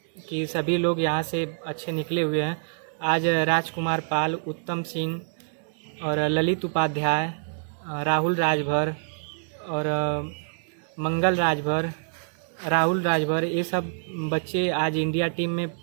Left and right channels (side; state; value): left; silent; digital silence